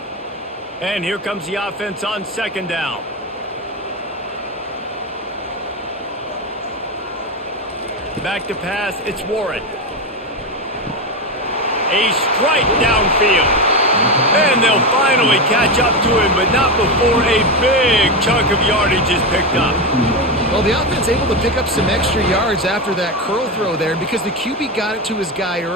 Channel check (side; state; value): both; normal; correlation 0.14